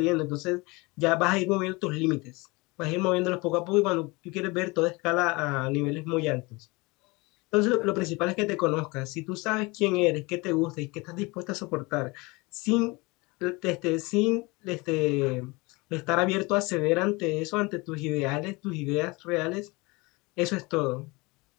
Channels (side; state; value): right; quieter; 25.1 dB